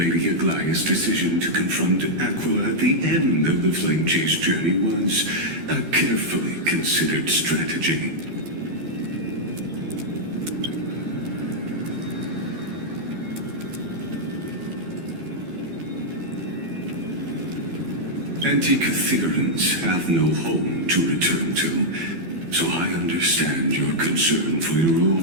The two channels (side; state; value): left; late; 12 ms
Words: Aglaya's decision to confront Aquila at the end of the Flame Chase journey was a carefully considered strategy. Antikytherans have no home to return to. so I understand your concern for your